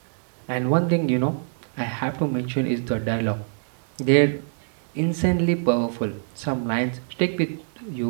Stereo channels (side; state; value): left; silent; digital silence